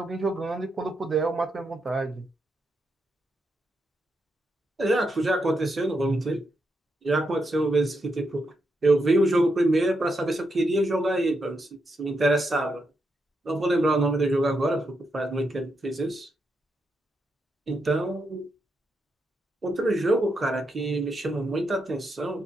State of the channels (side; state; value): both; normal; correlation 0.83